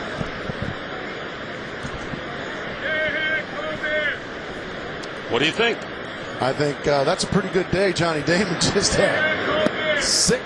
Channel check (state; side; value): identical; both; correlation 1.00